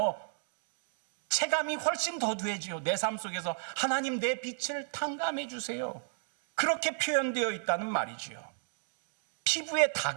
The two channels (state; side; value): silent; left; digital silence